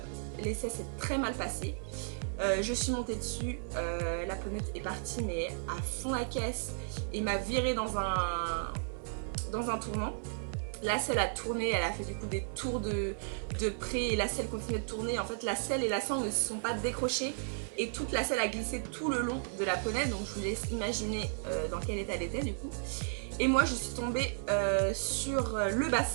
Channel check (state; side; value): silent; left; 55 dB below the other